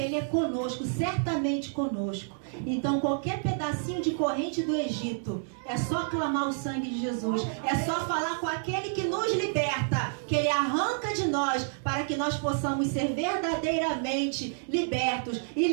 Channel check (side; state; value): left; silent; 58 dB below the other